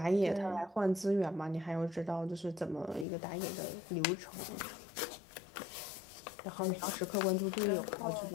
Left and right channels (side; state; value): right; drops out; at 3.1 s